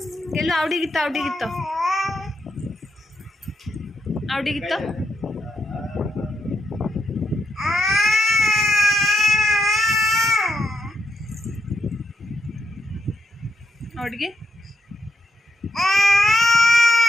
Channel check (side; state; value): both; normal; correlation 0.81